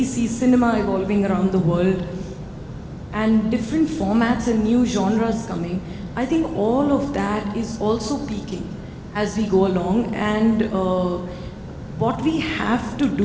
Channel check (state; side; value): identical; both; correlation 1.00